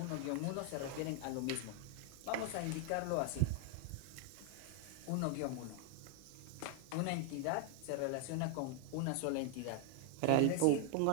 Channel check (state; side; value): different; both; correlation 0.00